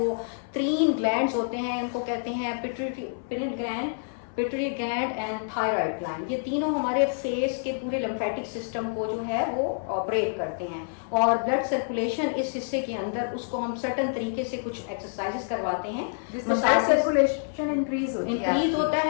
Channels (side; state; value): right; silent; 60 dB below the other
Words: 3 ग्लैंड्स होते हैं, इनको कहते हैं pituitary gland and thyroid gland. ये तीनों हमारे फेस के पूरे लिम्फेटिक सिस्टम को जो है वो ऑपरेट करते हैं, और ब्लड सर्कुलेशन इस हिस्से के अंदर, उसको हम सर्टन तरीके से कुछ एक्सरसाइजेस करवाते हैं, ब्लड सर्कुलेशन इंक्रीज होता